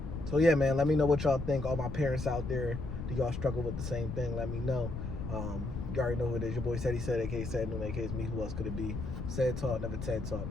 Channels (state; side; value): noise; left; rumble, 6 dB below the sound